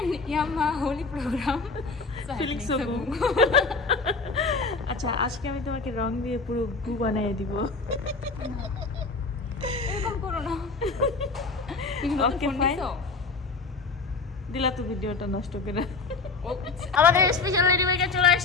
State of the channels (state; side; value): quieter; right; 4.1 dB